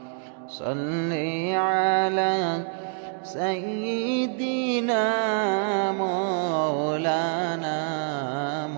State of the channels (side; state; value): left; silent; digital silence